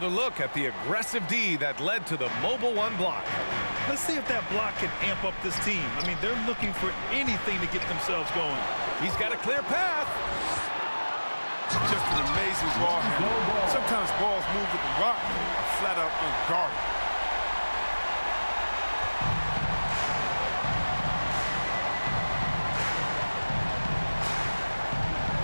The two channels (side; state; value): both; inverted; correlation -1.00